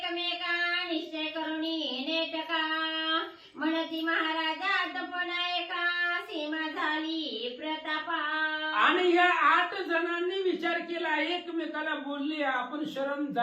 निश्चय करुनी नेटका म्हणती महाराजा तपना एका सीमा झाली प्रतापा. आणि या 8 जणांनी विचार केला, एकमेकाला बोलले आपण शरण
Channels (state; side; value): identical; both; correlation 1.00